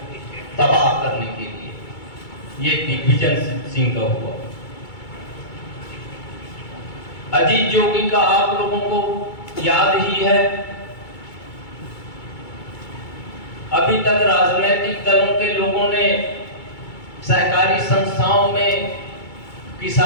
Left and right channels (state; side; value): late; right; 2.3 ms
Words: तबाह करने के लिए ये दिग्विजय सिंह का हुआ। अजीत जोगी का आप लोगों को याद ही है। अभी तक राजनीतिक दलों के लोगों ने सहकारी संस्थाओं में